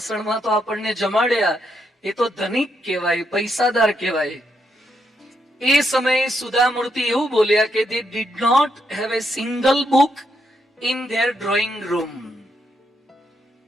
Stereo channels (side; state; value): both; normal; correlation 0.79